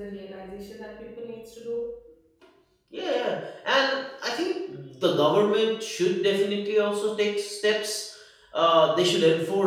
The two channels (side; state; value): both; identical; correlation 1.00